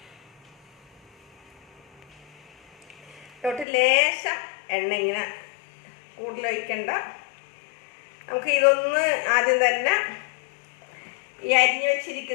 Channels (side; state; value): right; drops out; at 3.7 s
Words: ഇതിലോട്ട് ലേശം എണ്ണ, ഇങ്ങനെ കൂടുതൽ ഒഴിക്കണ്ട. നമുക്ക് ഇതൊന്ന് ആദ്യം തന്നെ ഈ അരിഞ്ഞു